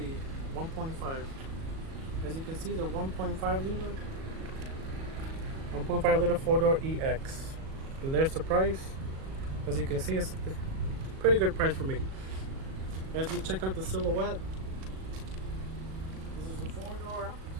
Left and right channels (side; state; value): left; late; 37 ms